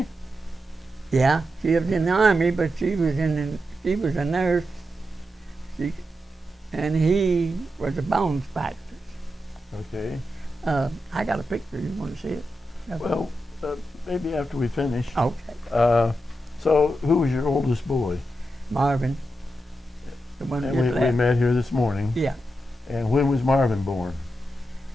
Yeah, she was in the Army, but she was a nurse. And he was a bones factor. Okay. I got a picture. You want to see it? Well, maybe after we finish. Okay. So who was your oldest boy? Marvin. The one And we met here this morning. Yeah. And when was Marvin born?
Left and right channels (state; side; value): normal; both; correlation 0.87